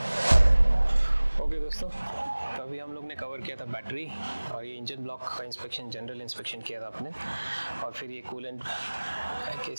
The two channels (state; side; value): inverted; both; correlation -1.00